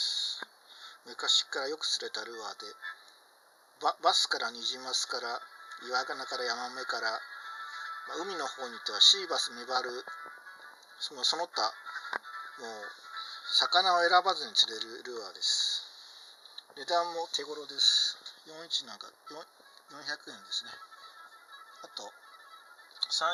昔からよく釣れたルアーで、バスからニジマスから岩ガナからヤマメから、海の方に行ってはシーバス、メバル、その他もう魚を選ばずに釣れるルアーです。値段も手頃です。41なんか400円ですね。あと3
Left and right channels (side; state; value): both; identical; correlation 1.00